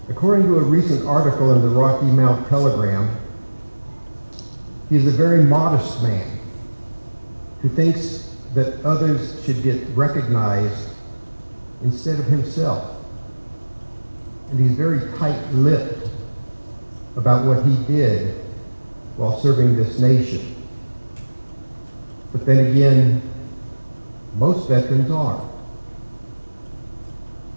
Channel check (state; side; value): inverted; both; correlation -1.00